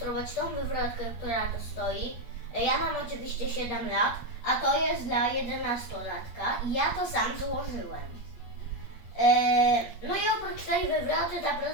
tą wywrotkę, która tu stoi. Ja mam oczywiście 7 lat, a to jest dla 11-latka i ja to sam złożyłem. No i oprócz tej wywroty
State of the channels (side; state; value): right; late; 8.4 ms